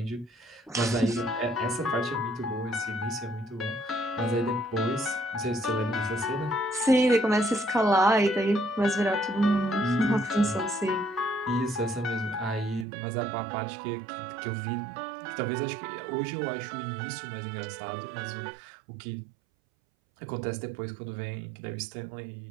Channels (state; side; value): drops out; left; at 12.9 s